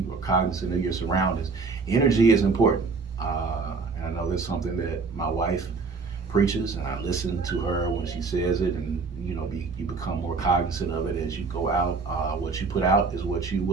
are cognizant of your surroundings. Energy is important. And I know that's something that my wife preaches, and I listen to her when she says it, and you become more cognizant of it as you go out. What you put out is what you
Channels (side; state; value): left; quieter; 4.5 dB